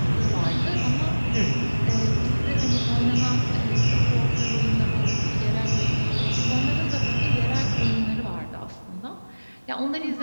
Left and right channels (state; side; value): inverted; both; correlation -1.00